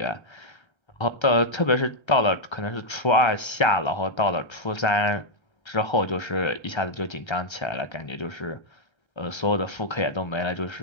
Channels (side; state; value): right; late; 1.3 ms